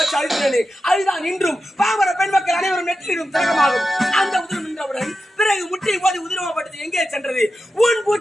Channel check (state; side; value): normal; both; correlation 0.91